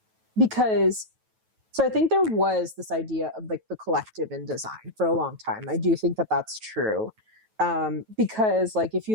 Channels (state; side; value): late; left; 9.2 ms